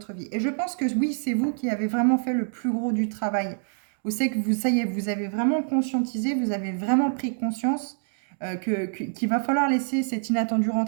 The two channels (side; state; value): left; silent; digital silence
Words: vie. Et je pense que oui, c'est vous qui avez vraiment fait le plus gros du travail. Vous savez que ça y est, vous avez vraiment conscientisé, vous avez vraiment pris conscience qu'il va falloir laisser cet inattendu